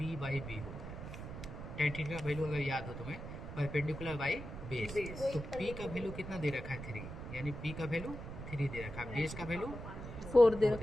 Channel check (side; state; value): right; noise; rumble, 9 dB below the sound